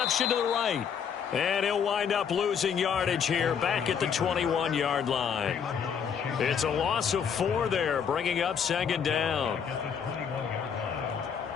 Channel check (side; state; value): right; quieter; 7.3 dB